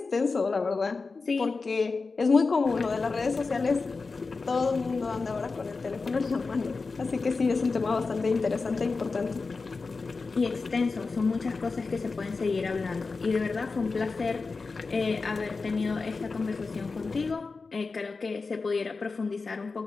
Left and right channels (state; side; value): quieter; right; 4.2 dB